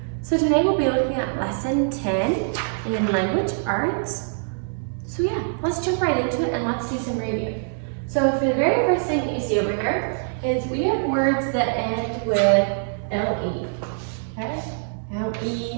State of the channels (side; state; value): left; silent; digital silence